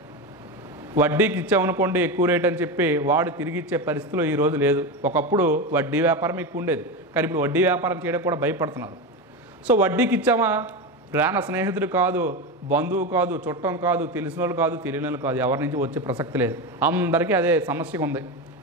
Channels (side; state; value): both; normal; correlation 0.18